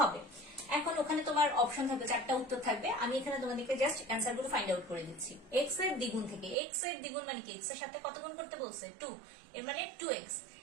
এখন ওখানে তোমার অপশন থাকবে, 4টা উত্তর থাকবে। আমি এখানে তোমাদেরকে জাস্ট অ্যান্সার গুলো ফাইন্ড আউট করে দিচ্ছি। x এর দ্বিগুণ থেকে, x এর দ্বিগুণ মানে কি? x এর সাথে কত গুণ করতে বলছে? 2। এর মানে 2x।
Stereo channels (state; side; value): drops out; left; at 6.6 s